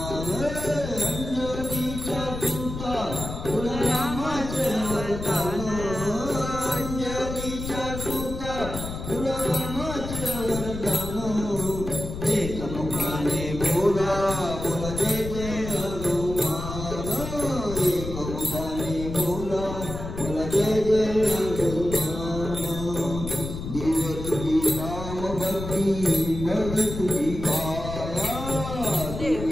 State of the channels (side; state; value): left; noise; rumble, 7 dB below the sound